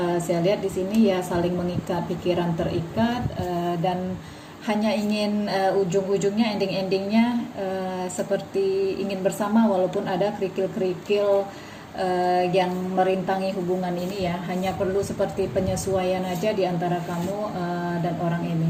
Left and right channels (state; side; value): identical; both; correlation 1.00